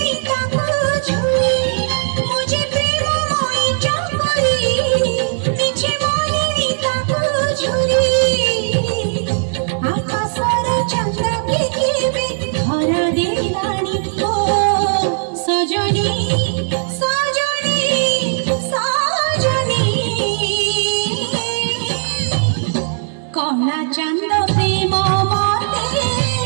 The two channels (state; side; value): silent; left; digital silence